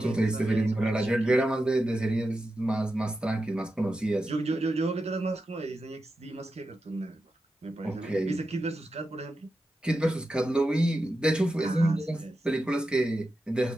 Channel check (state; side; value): normal; both; correlation 0.90